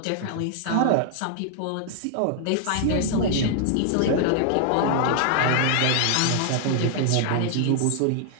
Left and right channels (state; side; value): different; both; correlation 0.00